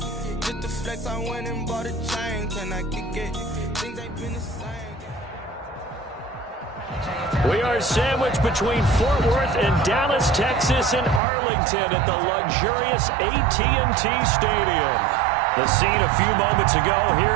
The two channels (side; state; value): left; drops out; at 11.2 s